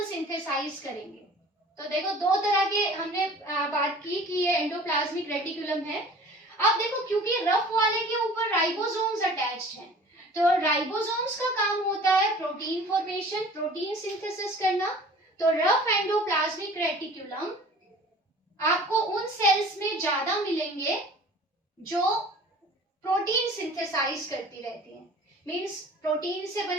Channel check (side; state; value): both; normal; correlation 0.46